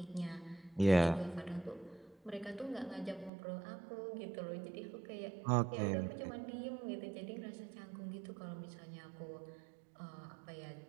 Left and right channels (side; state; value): left; drops out; at 3.3 s